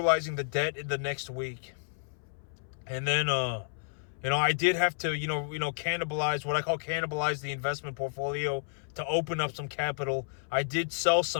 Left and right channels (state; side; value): silent; right; 57 dB below the other